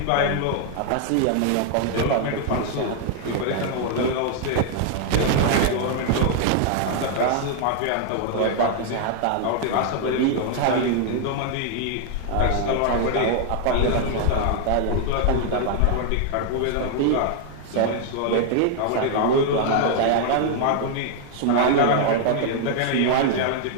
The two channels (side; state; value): both; different; correlation 0.00